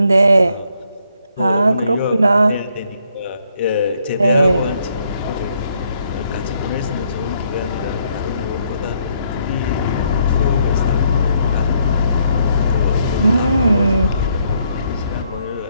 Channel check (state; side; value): inverted; both; correlation -0.72